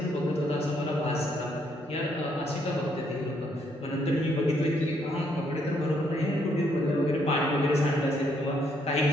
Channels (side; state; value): both; normal; correlation 0.72